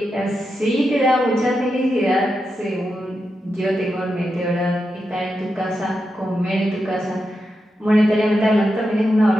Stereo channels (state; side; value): normal; both; correlation 0.87